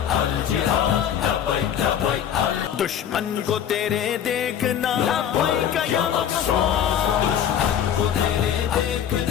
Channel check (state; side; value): quieter; right; 9.4 dB